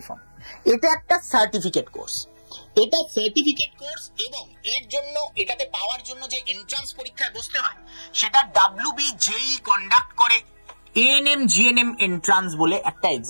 ফর্ম। এটা একটা সার্টিফিকেট কোর্স, এটা সার্টিফিকেট কোর্স, এবং এর জন্য, এটাতে পাওয়ার জন্য যে এন্ট্রান্স পরীক্ষায় বসতে হয় সেটা WBJEE কন্ডাক্ট করে এএনএম জিএনএম এন্ট্রান্স বলে একটা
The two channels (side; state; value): both; inverted; correlation -1.00